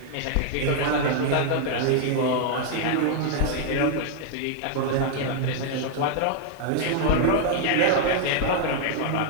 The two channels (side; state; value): both; different; correlation 0.00